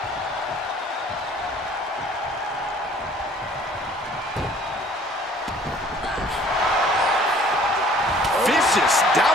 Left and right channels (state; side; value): normal; both; correlation 0.54